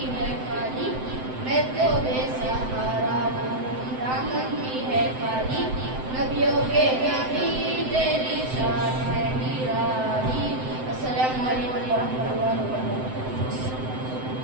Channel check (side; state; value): left; late; 7.8 ms